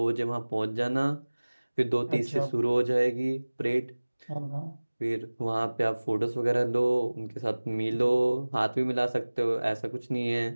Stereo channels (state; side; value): inverted; both; correlation -1.00